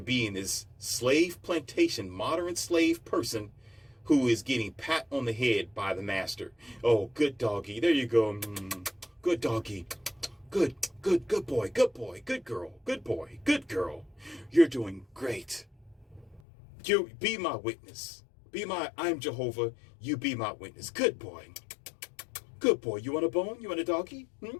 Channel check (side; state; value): right; drops out; at 16.4 s